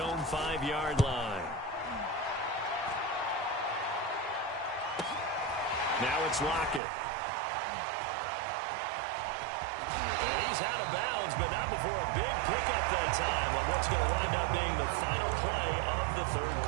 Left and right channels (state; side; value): drops out; left; at 6.8 s